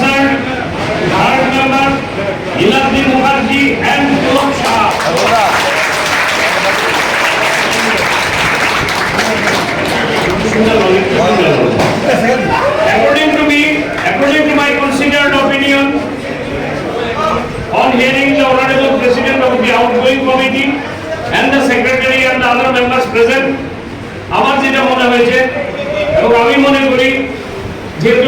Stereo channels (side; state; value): both; identical; correlation 1.00